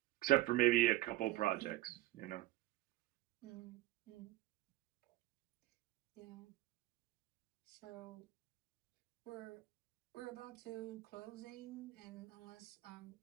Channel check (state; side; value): quieter; left; 16.8 dB